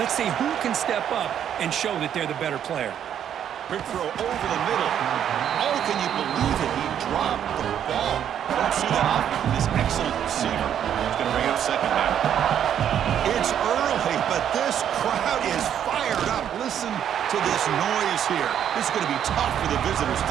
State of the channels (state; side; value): quieter; left; 9.5 dB